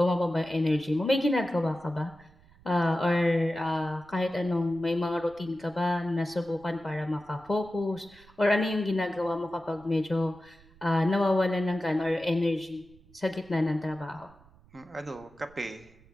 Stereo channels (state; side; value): noise; right; rumble, 26 dB below the sound